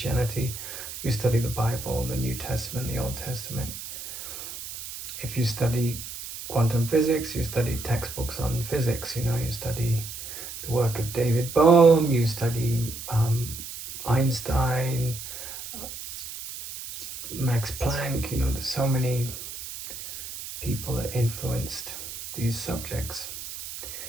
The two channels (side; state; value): right; noise; hiss, 10 dB below the sound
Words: you study the Bible, the New Testament, the Old Testament. If you study quantum physics, you study textbooks on physics, you study the work of David Bohm, you study Einstein, Max Planck, there's so many people that influenced these subjects.